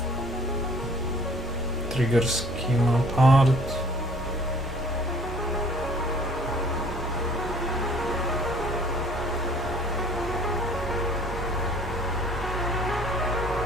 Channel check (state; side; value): normal; both; correlation 0.54